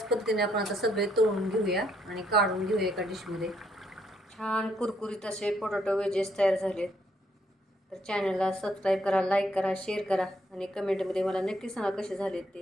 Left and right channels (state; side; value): normal; both; correlation 0.72